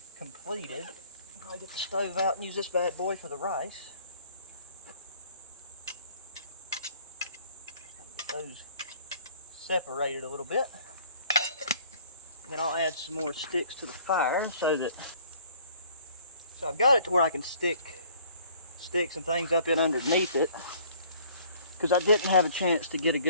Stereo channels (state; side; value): inverted; both; correlation -0.56